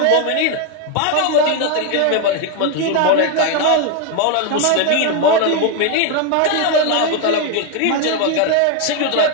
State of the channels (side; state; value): both; different; correlation 0.01